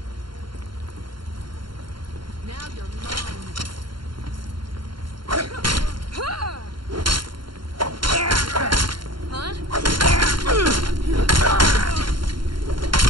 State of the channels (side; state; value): left; late; 0.72 ms